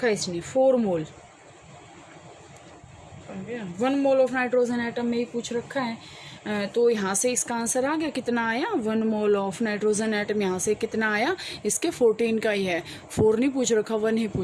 है इसने, 4 मोल। 1 मोल ऑफ नाइट्रोजन एटम में ही पूछ रखा है। तो यहाँ से इसका आंसर आ गया, कितना आया, 1 मोल ऑफ नाइट्रोजन एटम। यहाँ से कितना आया, इसके 14 का ही है, 4 नहीं पूछ रखा, 1 ही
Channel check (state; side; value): identical; both; correlation 1.00